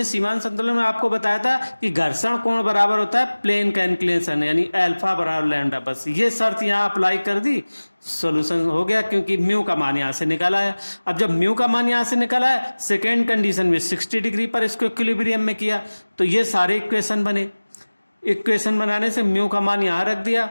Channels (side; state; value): both; inverted; correlation -1.00